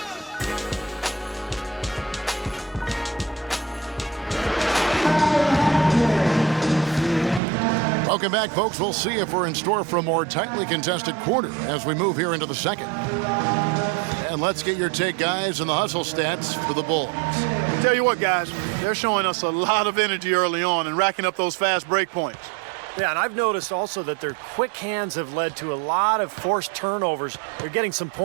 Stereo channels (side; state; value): left; drops out; at 7.4 s